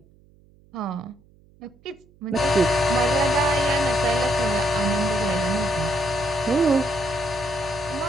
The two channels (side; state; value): right; noise; hum, 29 dB below the sound